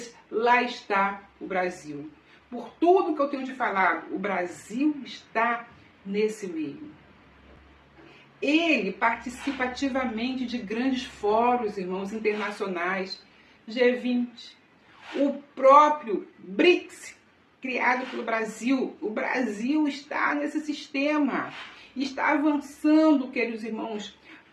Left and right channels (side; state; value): both; identical; correlation 1.00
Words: lá está o Brasil. Por tudo que eu tenho de falar, o Brasil está nesse meio. Ele participa ativamente de grandes fóruns, irmãos, internacionais, G20, o próprio BRICS, criado pelo Brasil. O Brasil está nesse sistema, está avançando, queridos irmãos,